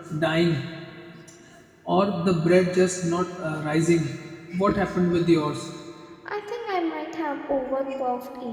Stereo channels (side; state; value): both; identical; correlation 1.00